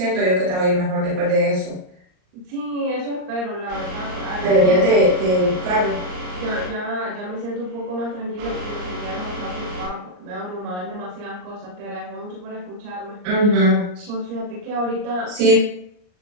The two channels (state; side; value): late; left; 39 ms